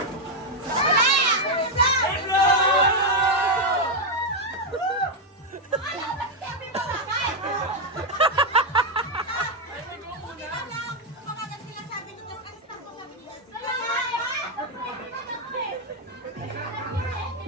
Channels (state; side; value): normal; both; correlation 0.03